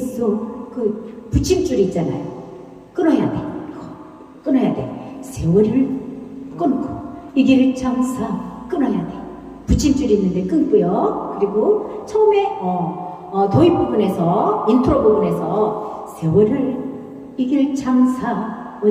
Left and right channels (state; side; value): identical; both; correlation 1.00